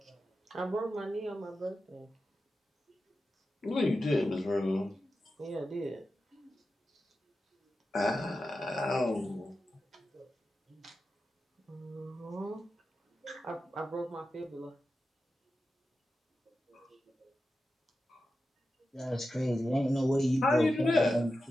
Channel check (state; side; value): normal; both; correlation 0.91